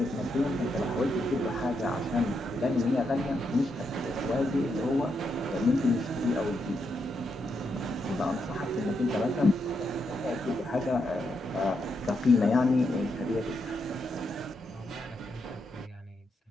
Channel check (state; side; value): normal; both; correlation 0.81